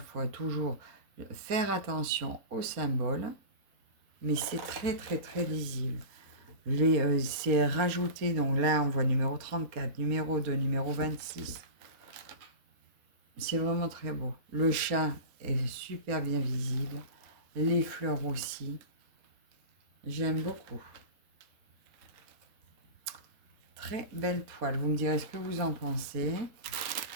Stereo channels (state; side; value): late; left; 4.3 ms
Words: fois, toujours faire attention aux symboles. Mais c'est très, très, très lisible. C'est rajouté, donc là, on voit numéro 34, numéro 2, numéro 26. C'est vraiment très beau. Le chat est super bien visible. Les fleurs aussi. J'aime beaucoup. Très belle toile. Vous me direz ce que vous en pensez.